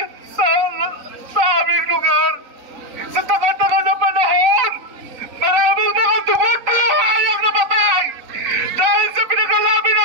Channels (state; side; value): late; left; 3.8 ms